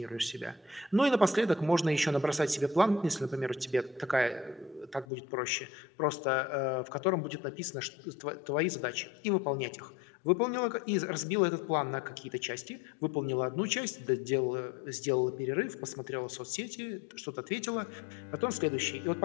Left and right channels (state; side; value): drops out; right; at 5.1 s